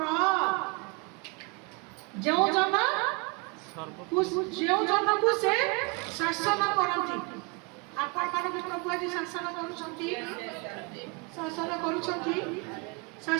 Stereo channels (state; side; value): quieter; left; 29.1 dB